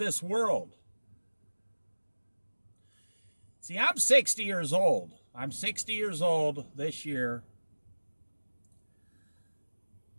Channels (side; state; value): both; inverted; correlation -1.00